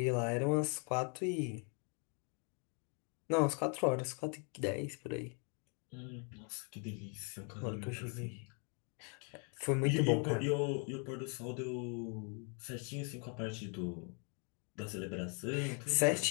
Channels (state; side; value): quieter; right; 38.5 dB